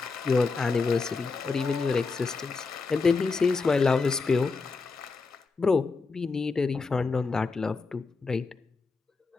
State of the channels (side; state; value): right; quieter; 4.4 dB